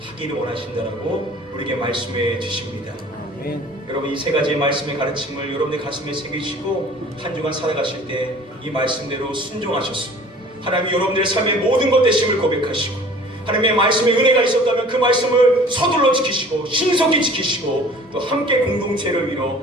원하신다라고 우리에게 말씀해 주십니다. 아멘. 여러분, 이 세 가지의 말씀의 가르침을 여러분의 가슴에 새기시고 한 주간 살아가실 때 이 말씀대로 순종하셔서 하나님이 여러분들의 삶의 모든 것 되심을 고백하시고 하나님의 말씀에 은혜가 있었다면 그 말씀을 서둘러 지키시고 신속히 지키시고 또 함께 공동체를 이뤄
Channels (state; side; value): normal; both; correlation 0.48